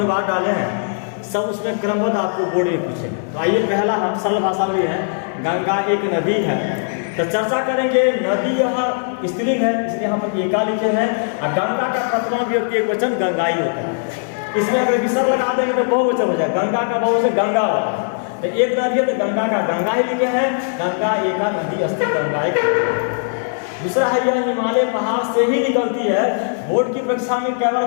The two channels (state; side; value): silent; right; digital silence